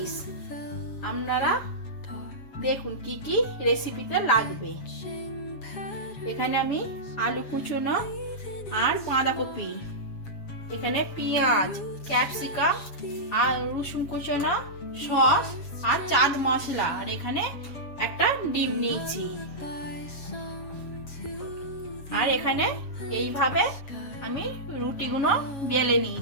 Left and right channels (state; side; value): late; right; 7.3 ms